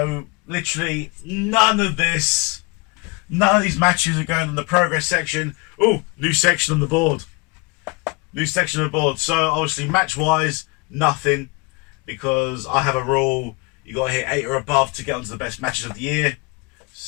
literally none of these matches are going on the progress section. Oh, new section on the board. So obviously match wise, nothing, because I have a rule: you got to hit 8 or above to get onto the best matches of the year.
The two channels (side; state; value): right; quieter; 28.0 dB